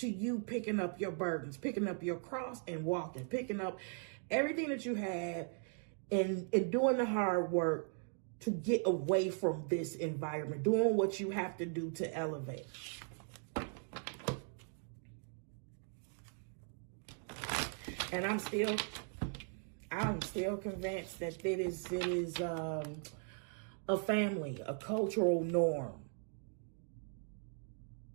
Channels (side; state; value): left; silent; 52 dB below the other